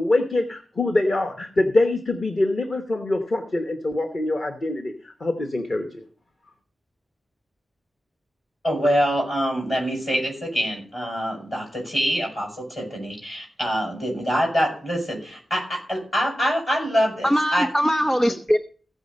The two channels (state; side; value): normal; both; correlation 0.93